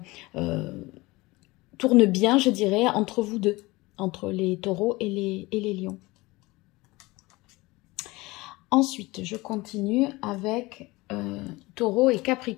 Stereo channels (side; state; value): right; quieter; 21.8 dB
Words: tournent bien, je dirais, entre vous deux, entre les taureaux et les lions. Ensuite, je continue avec taureau et